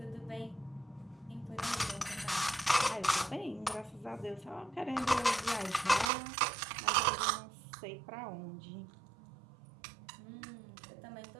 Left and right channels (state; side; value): drops out; left; at 6.1 s